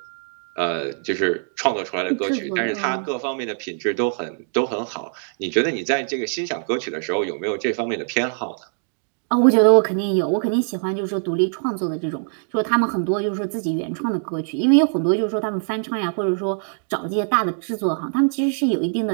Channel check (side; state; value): left; silent; digital silence